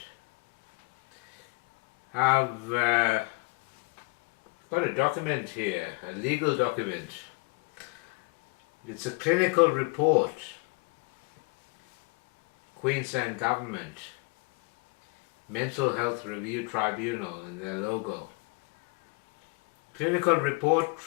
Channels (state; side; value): quieter; right; 28.1 dB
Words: I've got a document here, a legal document. It's a clinical report, Queensland Government, Mental Health Review Tribunal and their logo. Clinical Report